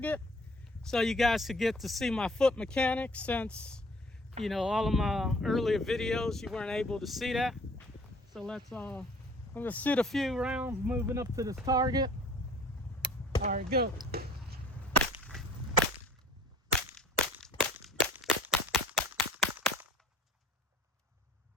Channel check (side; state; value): both; normal; correlation 0.53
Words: so you guys could get to see my foot mechanics, since all of my earlier videos you weren't able to see that. So I'm gonna shoot a few rounds moving up to this target. All right, go.